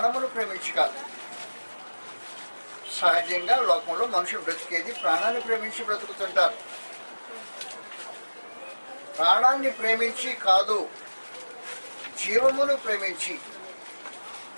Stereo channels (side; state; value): both; inverted; correlation -1.00